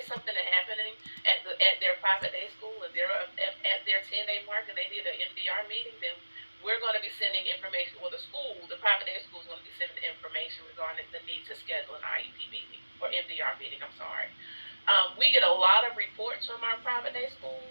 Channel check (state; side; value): inverted; both; correlation -1.00